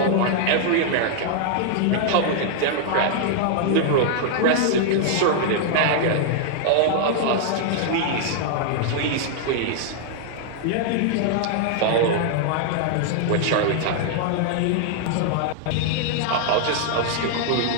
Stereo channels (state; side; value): different; both; correlation -0.01